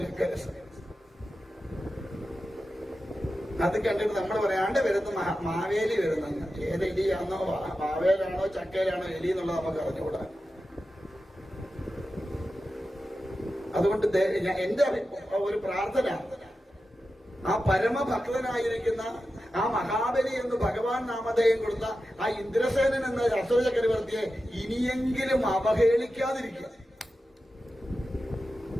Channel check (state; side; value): normal; both; correlation 0.92